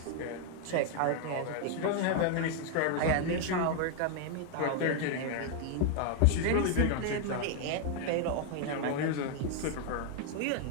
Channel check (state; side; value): different; both; correlation 0.00